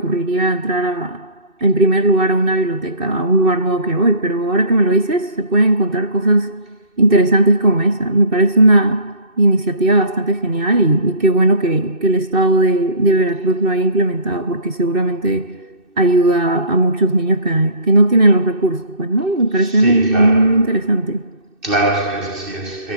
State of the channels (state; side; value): late; left; 2.6 ms